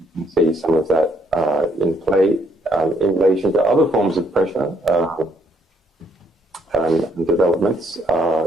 can see some of that in play in relation to other forms of pressure and developments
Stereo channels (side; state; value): both; normal; correlation 0.69